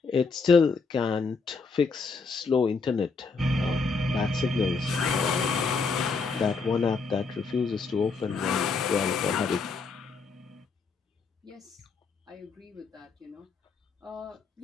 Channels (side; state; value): right; quieter; 4.5 dB